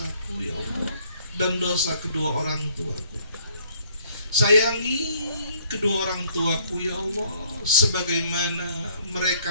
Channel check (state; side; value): inverted; both; correlation -0.62